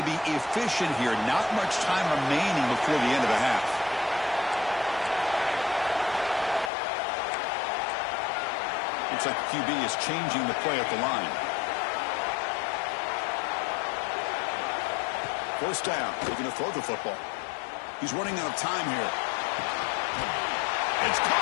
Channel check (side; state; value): right; drops out; at 6.7 s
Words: be efficient here. Not much time remaining before the end of the half. Looks like the QB is changing the play at the line. 1st down. Looking to throw the football. He's running out of time here. It's